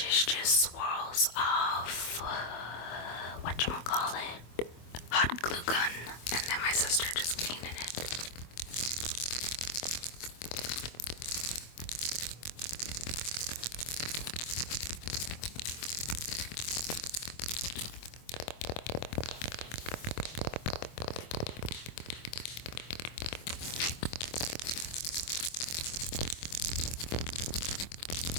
is just swirls of whatchamacallit, hot glue gun, and then my sister just painted it.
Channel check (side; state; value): right; late; 24 ms